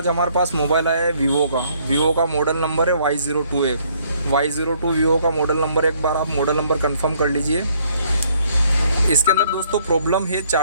हमारे पास मोबाइल आया है वीवो का मॉडल नंबर है Y02 है। Y02 वीवो का मॉडल नंबर, एक बार आप मॉडल नंबर कंफर्म कर लीजिए। इसके अंदर दोस्तों प्रॉब्लम है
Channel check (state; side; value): inverted; both; correlation -0.66